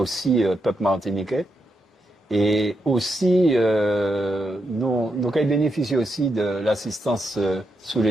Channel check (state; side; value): normal; both; correlation 0.83